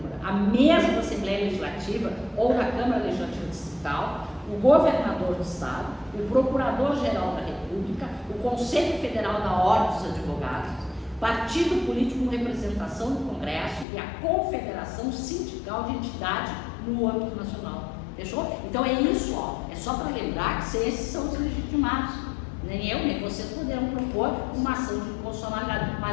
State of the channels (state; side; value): drops out; right; at 13.9 s